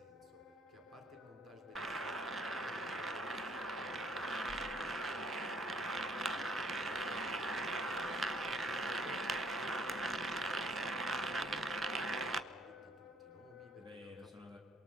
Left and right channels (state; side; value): normal; both; correlation 0.63